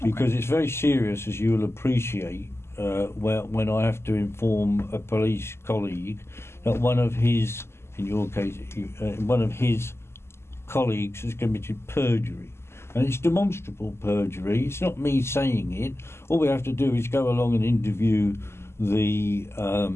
Because it's very serious, as you will appreciate, when I have to inform a police colleague that one of his, in your case, one of his colleagues has committed perjury. And it's demonstrable perjury. It's not me saying it. All we have to do is go along and interview the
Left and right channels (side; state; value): right; late; 0.12 ms